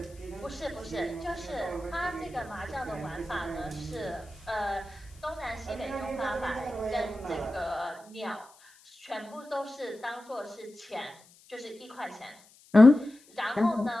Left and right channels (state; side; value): noise; left; hiss, 26 dB below the sound